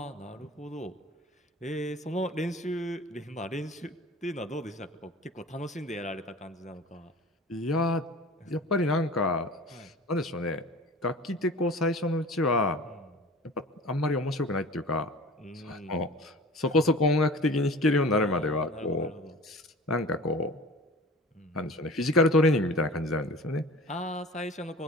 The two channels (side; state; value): both; normal; correlation 0.40